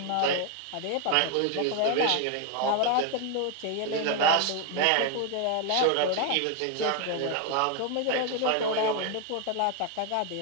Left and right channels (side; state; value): both; different; correlation 0.01